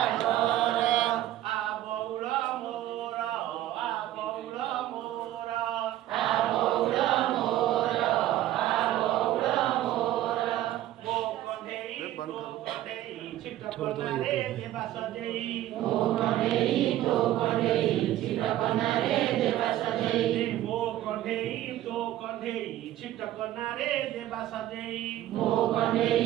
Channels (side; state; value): left; quieter; 13.7 dB